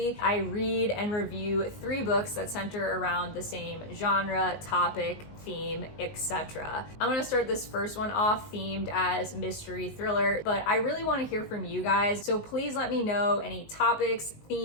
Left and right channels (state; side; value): late; right; 19 ms